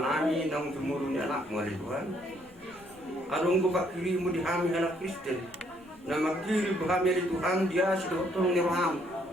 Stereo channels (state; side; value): noise; left; rumble, 28 dB below the sound